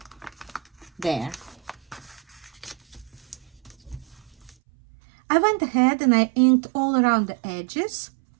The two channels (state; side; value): drops out; left; at 4.5 s